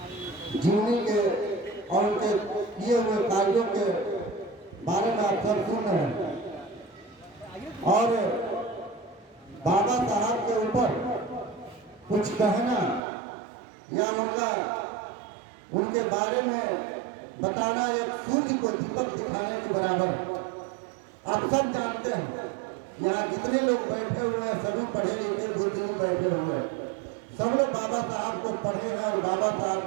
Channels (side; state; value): left; drops out; at 13.0 s